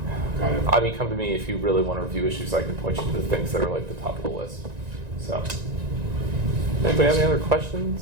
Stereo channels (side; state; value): left; late; 1.9 ms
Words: it. come to me if you really want to review issues. I can point you to the things that are like the top of the list. So, anybody have any other